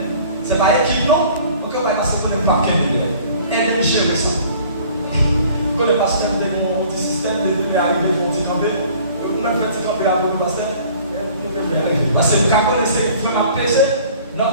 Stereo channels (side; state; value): both; inverted; correlation -0.51